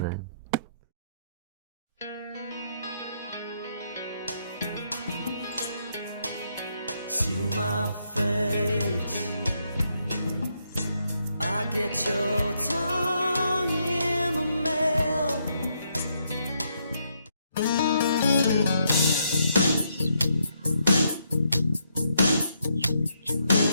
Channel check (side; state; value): both; inverted; correlation -0.77